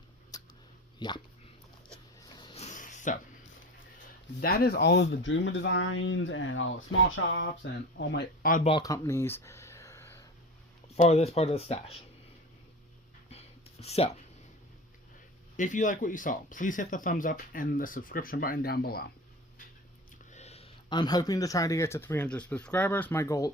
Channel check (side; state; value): both; normal; correlation 0.33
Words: Yeah. So, that is all of the Dreamer Designs and all the small shops and all my oddball companies for this part of the stash. So, if you like what you saw, please hit the thumbs up and the subscription button down below. I'm hoping to try to get to 300 subscribers. My